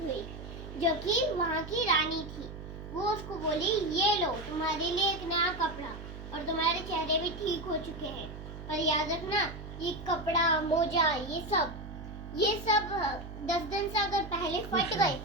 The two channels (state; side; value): noise; right; hum, 12 dB below the sound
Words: जो कि वहाँ की रानी थी। वो उसको बोली, ये लो तुम्हारे लिए एक नया कपड़ा, और तुम्हारे चेहरे भी ठीक हो चुके हैं, पर याद रखना ये कपड़ा, मोजा, ये सब 10 दिन से अगर पहले फट गए